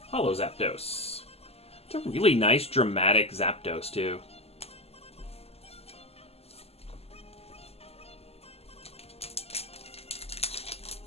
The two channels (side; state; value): right; late; 0.29 ms